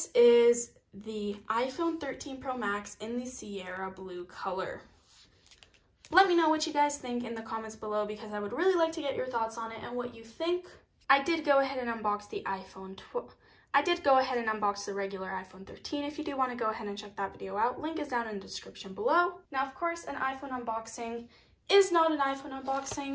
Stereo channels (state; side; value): identical; both; correlation 1.00